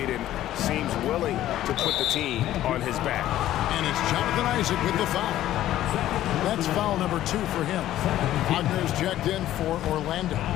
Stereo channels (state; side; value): quieter; right; 13.3 dB